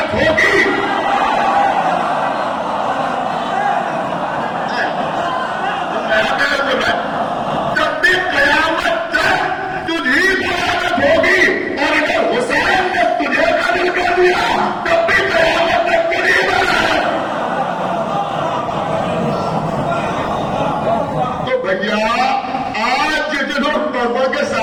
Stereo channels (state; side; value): identical; both; correlation 1.00